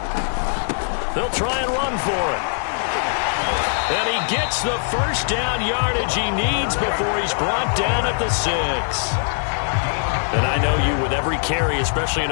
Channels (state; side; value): silent; right; digital silence